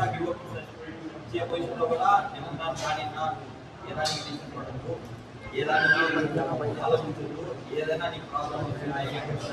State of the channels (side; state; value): both; identical; correlation 1.00